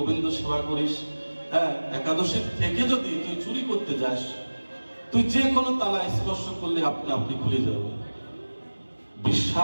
সেবা করিস, হ্যাঁ, একাদশীর থেকে যদি তুই চুরি করতে যাস, তুই যে কোনো তালা স্পর্শ করলে আপনি খুলে যাবে।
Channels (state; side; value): inverted; both; correlation -1.00